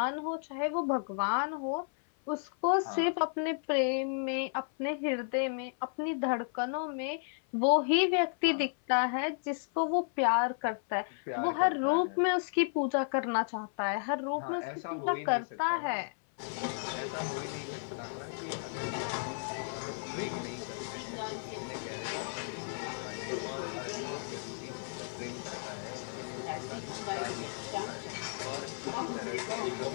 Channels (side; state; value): right; silent; 55 dB below the other